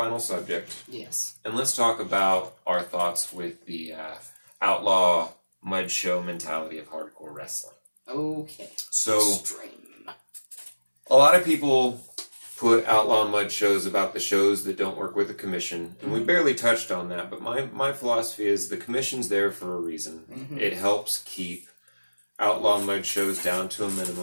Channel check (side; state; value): both; inverted; correlation -1.00